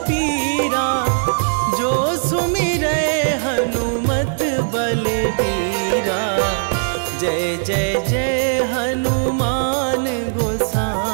जो सुमिरै हनुमत बलबीरा। जय जय जय हनुमान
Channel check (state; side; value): silent; left; 66 dB below the other